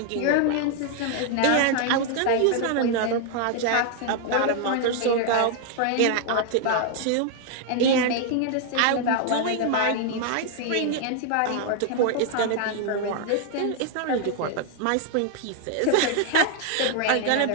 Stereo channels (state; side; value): different; both; correlation 0.00